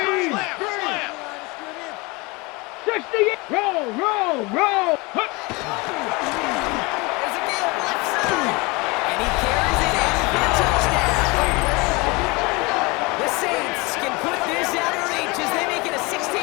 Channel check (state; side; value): quieter; right; 25.8 dB